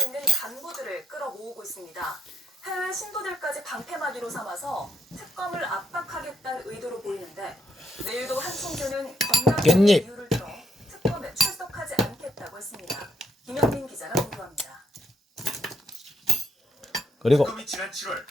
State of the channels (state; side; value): normal; both; correlation 0.74